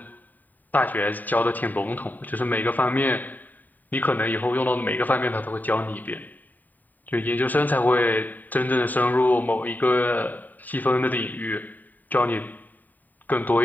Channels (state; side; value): late; right; 0.086 ms